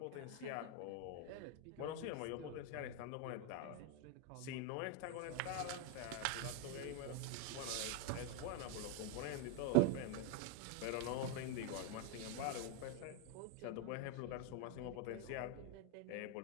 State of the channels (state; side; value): different; both; correlation 0.01